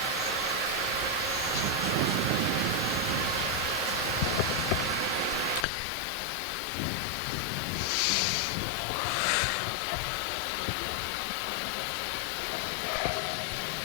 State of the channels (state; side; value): drops out; right; at 5.7 s